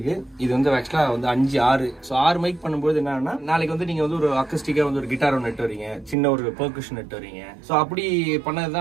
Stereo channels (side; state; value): left; drops out; at 6.2 s